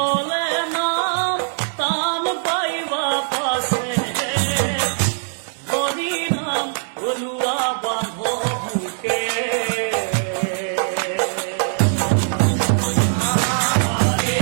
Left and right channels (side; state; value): left; silent; 65 dB below the other